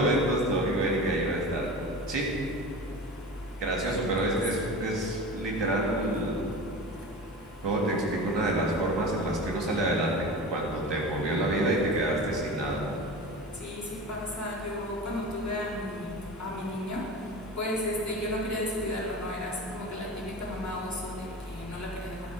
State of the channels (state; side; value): normal; both; correlation 0.32